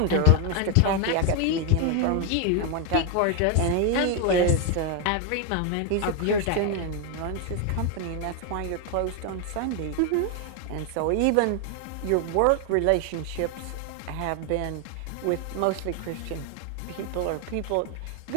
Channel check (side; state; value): both; different; correlation 0.01